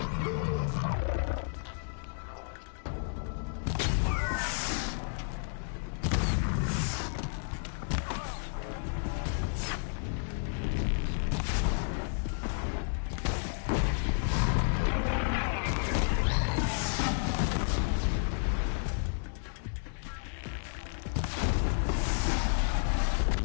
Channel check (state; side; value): silent; right; digital silence